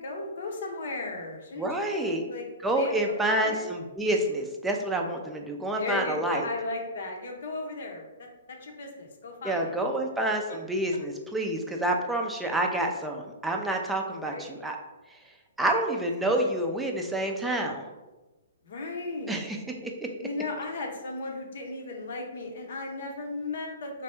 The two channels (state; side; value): normal; both; correlation 0.04